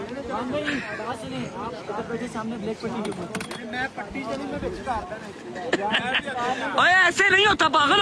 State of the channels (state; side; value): identical; both; correlation 1.00